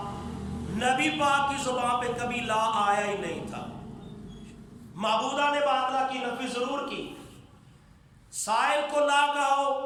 نبی پاک کی زبان پہ کبھی لا آیا ہی نہیں تھا۔ معبودہ نے باطلہ کی نفی ضرور کی، سائل کو لا کہو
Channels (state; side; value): identical; both; correlation 1.00